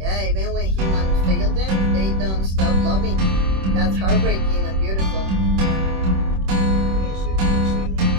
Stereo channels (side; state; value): left; late; 26 ms